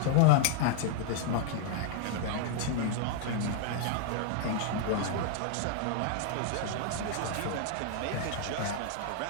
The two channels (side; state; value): both; different; correlation 0.00